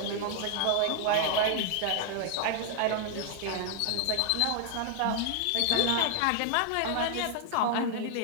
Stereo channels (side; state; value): both; different; correlation 0.00